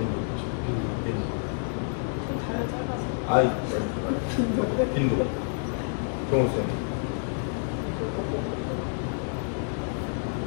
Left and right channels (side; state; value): right; silent; 59 dB below the other